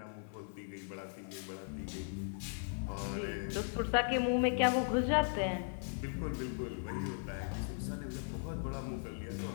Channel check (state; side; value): silent; right; 53 dB below the other